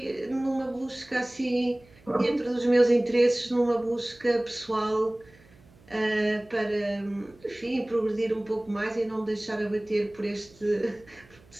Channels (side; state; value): right; noise; hum, 27 dB below the sound